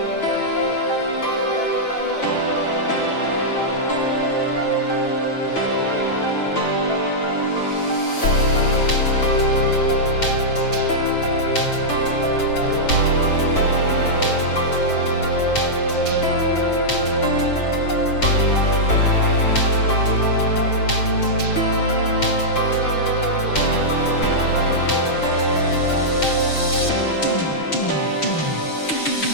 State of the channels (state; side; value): late; right; 6.5 ms